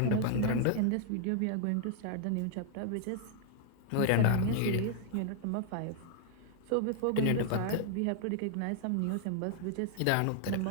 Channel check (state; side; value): different; both; correlation 0.00